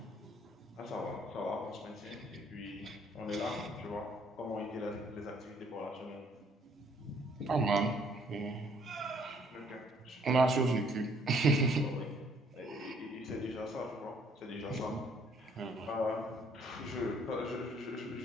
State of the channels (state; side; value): normal; both; correlation 0.63